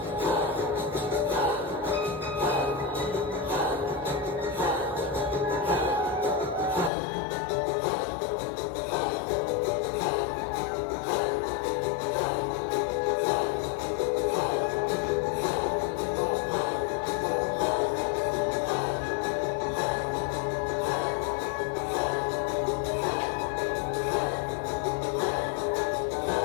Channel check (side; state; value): right; drops out; at 6.9 s